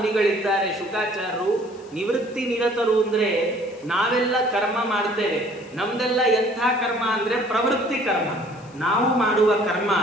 ಶುಕಾಚಾರ್ಯರು. ನಿವೃತ್ತಿ ನಿರತರು ಅಂದ್ರೆ ನಾವೆಲ್ಲ ಕರ್ಮ ಮಾಡ್ತೇವೆ. ನಮ್ದೆಲ್ಲ ಎಂಥ ಕರ್ಮ ಅಂದ್ರೆ ಪ್ರವೃತ್ತಿ ಕರ್ಮ. ನಾವು ಮಾಡುವ ಕರ್ಮ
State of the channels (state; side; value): noise; left; hiss, 27 dB below the sound